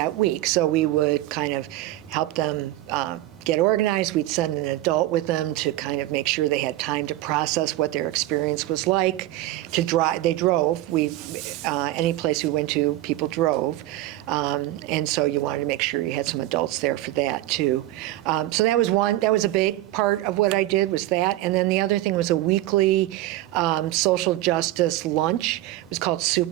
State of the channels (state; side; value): quieter; left; 15.8 dB